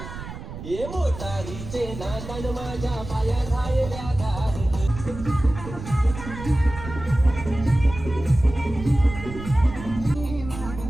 मोटारीचे नांदण माझ्या पाया झालेल्या धार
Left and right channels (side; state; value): right; noise; rumble, 11 dB below the sound